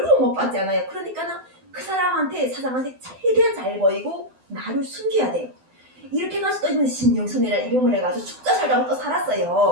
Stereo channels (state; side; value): late; left; 12 ms